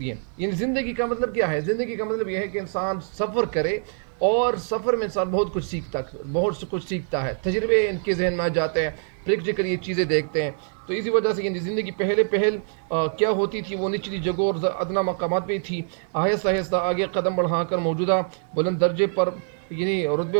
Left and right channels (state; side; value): silent; left; digital silence